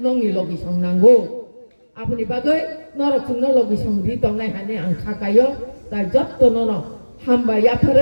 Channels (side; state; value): both; inverted; correlation -1.00